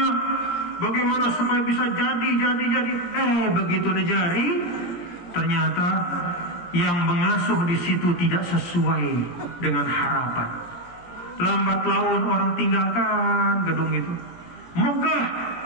bagaimana supaya bisa jadi. Begitu nejari, ternyata yang mengasuh di situ tidak sesuai dengan harapan. Lambat laun orang tinggalkan gedung itu, megah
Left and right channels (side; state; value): right; late; 17 ms